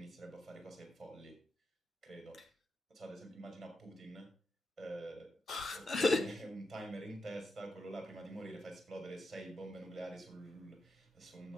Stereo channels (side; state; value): both; normal; correlation 0.87